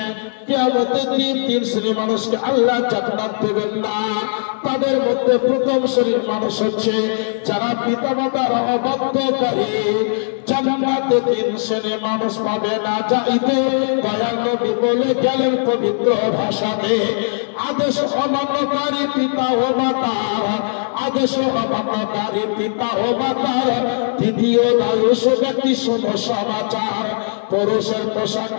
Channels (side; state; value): right; silent; digital silence